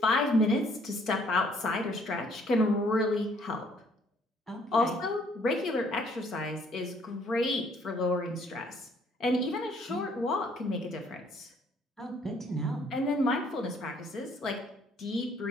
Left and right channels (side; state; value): both; normal; correlation 0.63